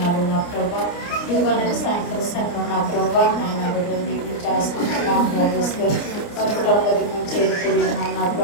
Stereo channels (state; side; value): late; right; 29 ms